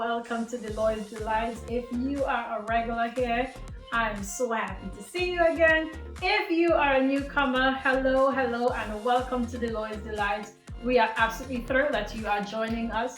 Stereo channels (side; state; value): both; identical; correlation 1.00